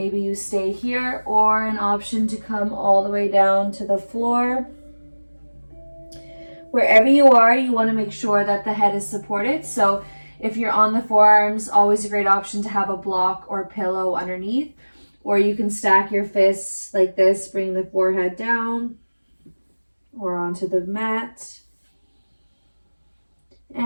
you stay here, or an option to come all the way down to the floor. Wherever you are, you want to make sure that the head is supported. So if you're on the forearms, always a great option to have a block or pillow underneath. Or you can stack your fists like this, bring the forehead down or onto the mat.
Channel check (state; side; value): inverted; both; correlation -1.00